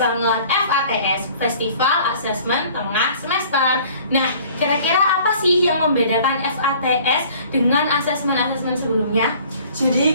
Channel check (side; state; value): both; inverted; correlation -0.51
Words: banget, FATS, Festival Assessment Tengah Semester. Nah, kira-kira apa sih yang membedakan FATS dengan asesmen-asesmen sebelumnya?